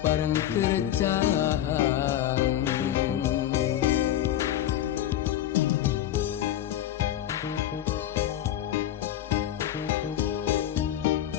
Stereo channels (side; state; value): right; quieter; 12.0 dB